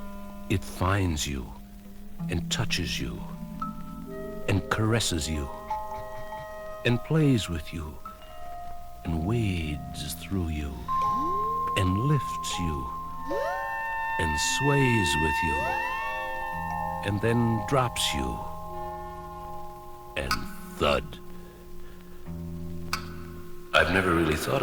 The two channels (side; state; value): both; identical; correlation 1.00